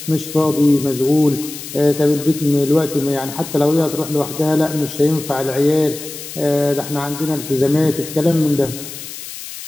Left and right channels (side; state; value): left; noise; hiss, 11 dB below the sound